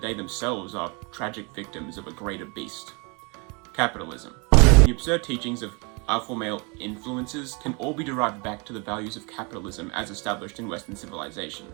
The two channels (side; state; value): left; quieter; 31.3 dB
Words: themselves are tragic victims of a greater beast: capitalism. The absurd teachings of alpha male influences can all be derived back to the values of capitalism as established in Western civilization.